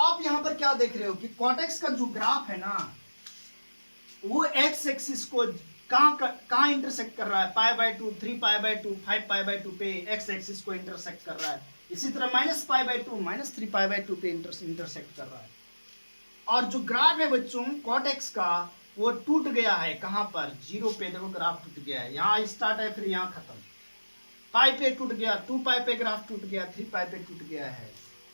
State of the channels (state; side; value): inverted; both; correlation -1.00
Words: यहां पर क्या देख रहे हो कि कॉटेक्स का जो ग्राफ है ना, वो एक्स एक्सिस को कहां इंटरसेक्ट कर रहा है, π/2, 3π/2, 5π/2 पे एक्स एक्सिस को इंटरसेक्ट कर रहा है। इसी तरह -π/2, -3π/2 पे इंटरसेक्ट कर रहा है। और जो ग्राफ है बच्चों कॉटेक्स का, वो टूट गया है। कहां पर? 0 पे। देखो ग्राफ टूट गया है, यहां स्टार्ट है फिर यहां खत्म। पाई पे टूट गया, 2π पे ग्राफ टूट गया, 3π पे टूट गया है।